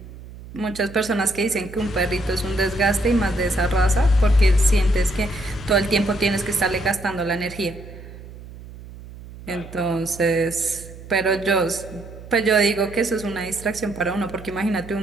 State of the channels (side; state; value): right; noise; hum, 16 dB below the sound